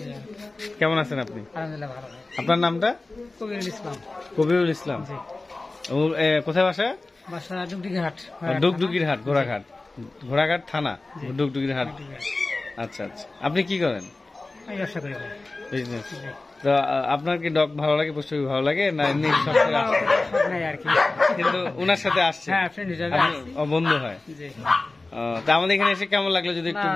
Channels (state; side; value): quieter; right; 3.2 dB